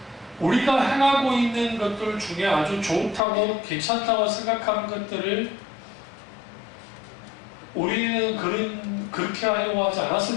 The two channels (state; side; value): drops out; right; at 3.2 s